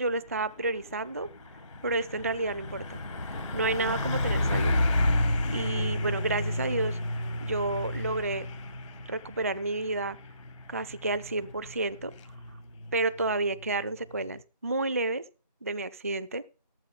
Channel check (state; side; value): inverted; both; correlation -0.64